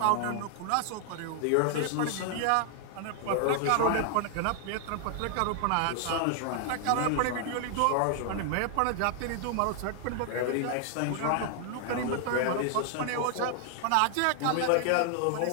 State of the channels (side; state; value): both; different; correlation 0.00